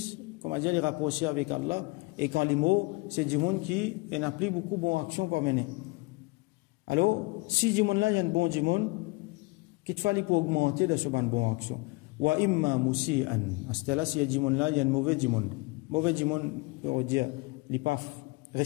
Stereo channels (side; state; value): right; quieter; 25.6 dB